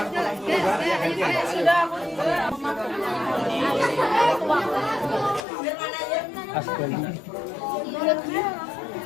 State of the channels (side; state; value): right; drops out; at 5.5 s